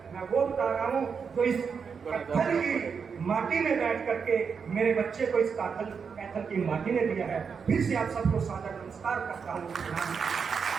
मैं वो बता रहा हूँ जो इस पत्थर की माटी में बैठ करके मेरे बच्चे को इस कैथल की माटी ने दिया है। फिर से आप सबको सादर नमस्कार करता हूँ।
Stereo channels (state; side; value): quieter; left; 6.1 dB